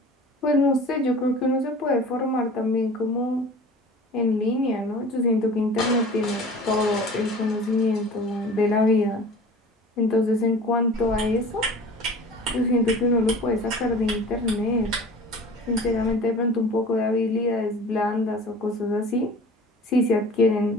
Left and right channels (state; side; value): normal; both; correlation 0.42